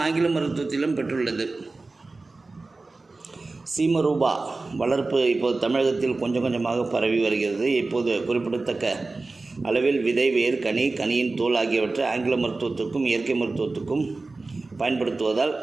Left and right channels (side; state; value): left; quieter; 3.5 dB